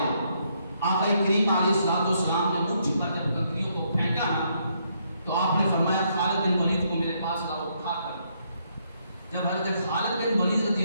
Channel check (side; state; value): both; inverted; correlation -0.74